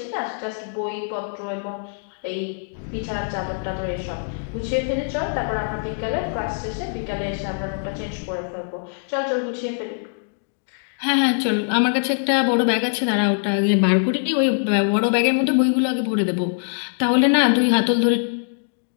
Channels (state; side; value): silent; right; digital silence